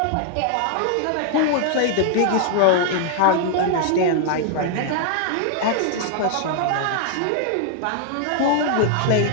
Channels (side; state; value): both; different; correlation 0.00